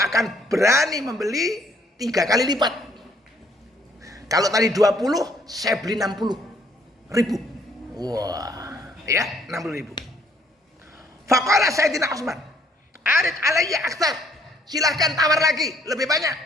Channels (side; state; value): both; normal; correlation 0.65